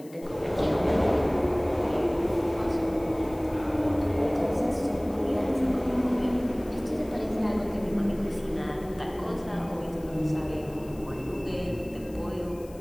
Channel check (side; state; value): left; noise; hiss, 24 dB below the sound